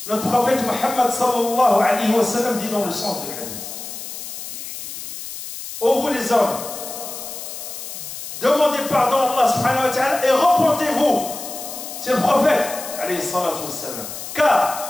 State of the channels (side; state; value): left; noise; hiss, 9 dB below the sound